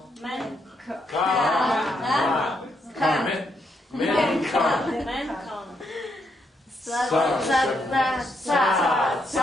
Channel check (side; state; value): both; normal; correlation 0.78